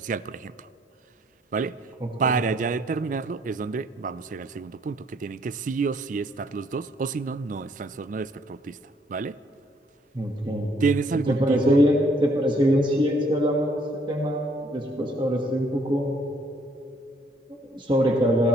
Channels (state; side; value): normal; both; correlation 0.66